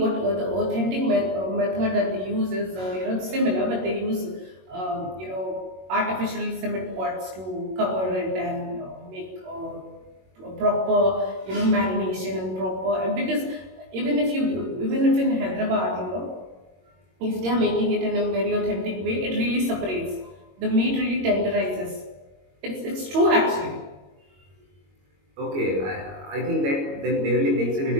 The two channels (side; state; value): left; late; 22 ms